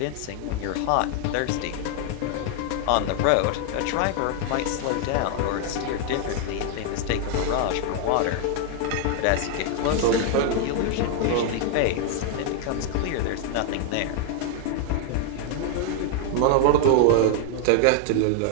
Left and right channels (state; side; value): different; both; correlation 0.00